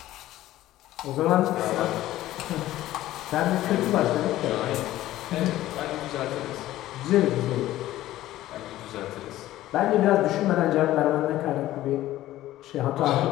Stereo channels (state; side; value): quieter; right; 14.8 dB